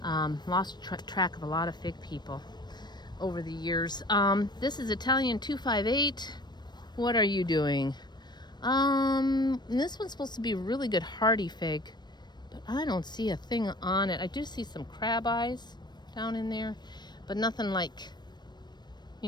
Lost track of a lot of fig people. over the years. This is Italian 258. What are you doing? This one's supposed to be a really good hardy fig, but I don't see a thing on it. I do see some crab eyes down in there, but nothing like,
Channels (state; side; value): late; right; 0.21 ms